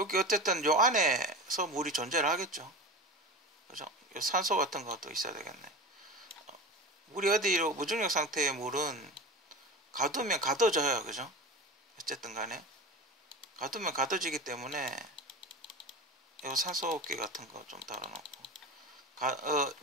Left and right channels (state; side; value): normal; both; correlation 0.30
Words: 어쨌든 요 안에서 물이 존재를 하겠죠. 그죠? 요 산소 같은 것도 있어야 되겠네. 물이 어디로, 무중력 상태의 물은 가두면 가둬져요, 그죠? 어쨌든 간에 가두면 가둬지기 때문에 이 산소호흡기 같은 거 좀 달아놓고,